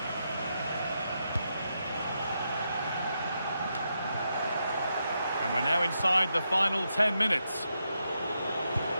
And we're now inside the final 10 minutes.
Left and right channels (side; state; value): both; inverted; correlation -0.83